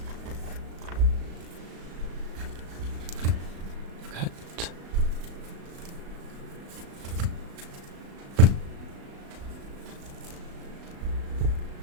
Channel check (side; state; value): left; late; 36 ms